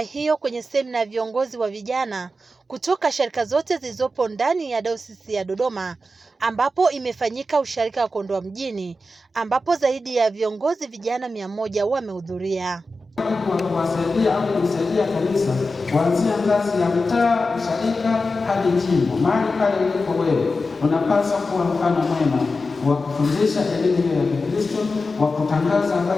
hiyo kwenye semina ya viongozi wa vijana kutoka sharika zote zilizopo ndani ya Dayosisi ya Dodoma, ambapo imefanyika usharika wa Kondoa Mjini, ambapo zaidi ya viongozi vijana 100 wamehudhuria. Kuwasaidia au kusaidia kanisa kuanzia ngazi ya mtaa, usharika hadi jimbo. Mahali pale ulipo wewe unapaswa kuwa mfano mwema wa kufundisha elimu ya Kikristo, wa kutangaza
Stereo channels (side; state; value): both; normal; correlation 0.92